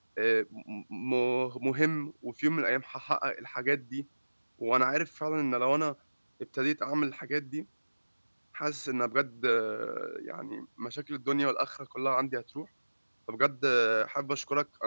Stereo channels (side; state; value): both; inverted; correlation -1.00